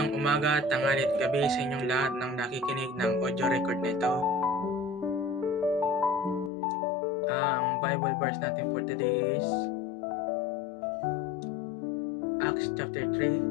umaga, tanghali at gabi sa inyong lahat ng nakikinig ng audio record nito. Ang Bible verse natin for today is Acts chapter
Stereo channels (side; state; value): right; drops out; at 6.5 s